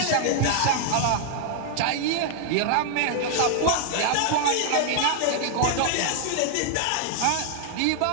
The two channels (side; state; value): both; different; correlation 0.00